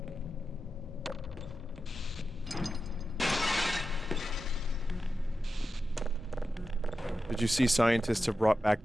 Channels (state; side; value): normal; both; correlation 0.91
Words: Did you see scientists have brought back